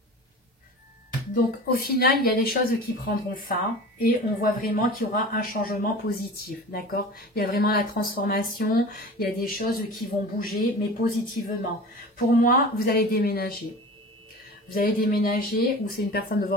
Donc, au final, il y a des choses qui prendront fin et on voit vraiment qu'il y aura un changement positif, d'accord? Il y a vraiment la transformation, il y a des choses qui vont bouger, mais positivement. Pour moi, vous allez déménager. Vous allez déménager ou c'est une personne de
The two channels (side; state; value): both; normal; correlation 0.36